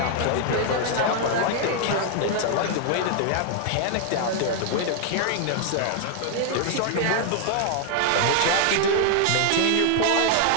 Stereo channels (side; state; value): both; different; correlation 0.00